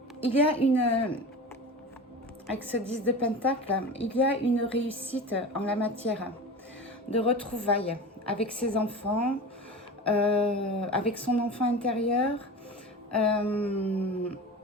Il y a avec ce 10 de pentacle, il y a une réussite en la matière de retrouvailles avec ses enfants, avec son enfant intérieur,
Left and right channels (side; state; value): both; normal; correlation 0.31